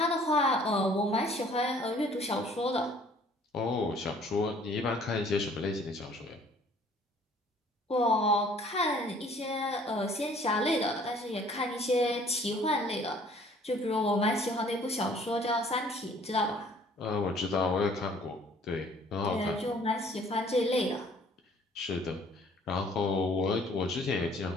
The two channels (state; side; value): normal; both; correlation 0.56